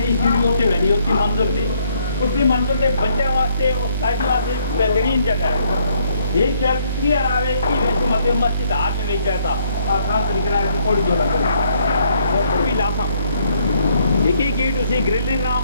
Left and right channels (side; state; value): both; inverted; correlation -0.67